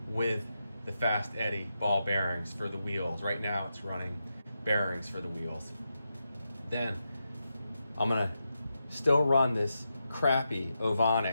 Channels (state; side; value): inverted; both; correlation -0.87